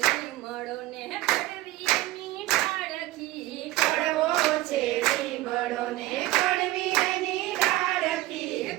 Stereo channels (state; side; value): quieter; left; 17.1 dB